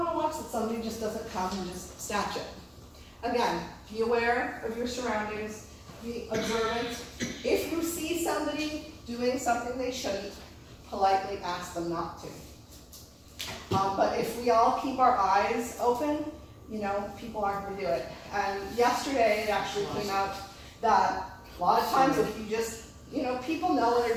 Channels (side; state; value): both; identical; correlation 1.00